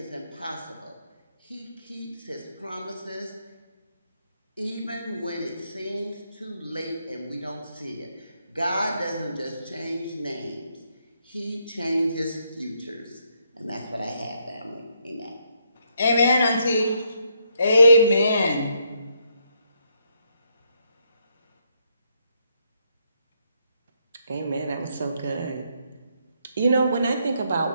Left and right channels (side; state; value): both; inverted; correlation -0.75